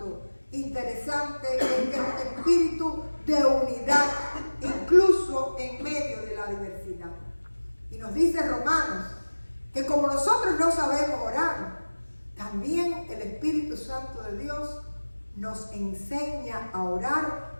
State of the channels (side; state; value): both; inverted; correlation -1.00